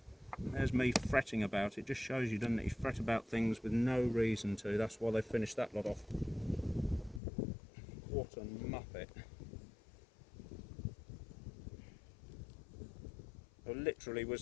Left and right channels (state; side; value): drops out; right; at 7.2 s